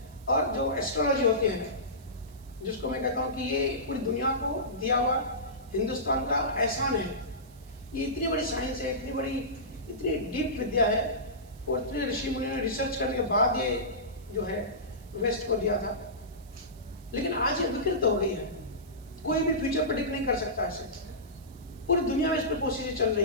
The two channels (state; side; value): noise; right; hiss, 26 dB below the sound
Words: और जो एस्ट्रोलॉजी होती है, जिसको मैं कहता हूँ कि ये पूरी दुनिया को दिया हुआ हिंदुस्तान का एहसान है। ये इतनी बड़ी साइंस है, इतनी डीप विद्या है, और इतने ऋषि मुनियों ने रिसर्च करने के बाद ये जो है वेस्ट को दिया था। लेकिन आज ये विकृत हो गई है, कोई भी फ्यूचर प्रेडिक्ट नहीं कर सकता ऐसे। पूरी दुनिया में इस पर कोशिशें चल